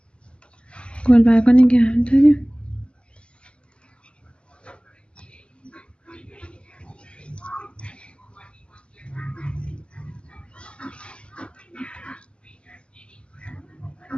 گل برگا نگه داریم.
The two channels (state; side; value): late; right; 0.054 ms